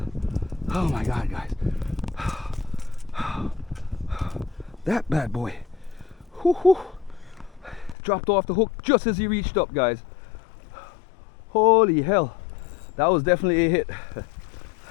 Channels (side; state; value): right; drops out; at 8.0 s